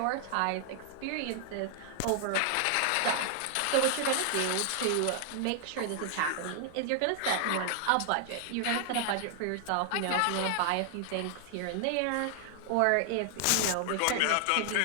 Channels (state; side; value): different; both; correlation 0.00